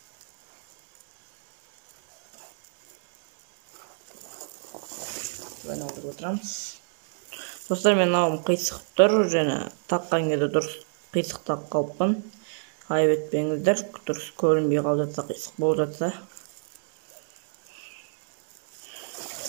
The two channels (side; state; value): left; silent; 60 dB below the other